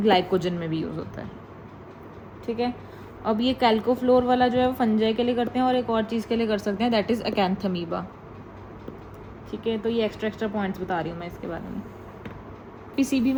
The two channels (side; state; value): both; identical; correlation 1.00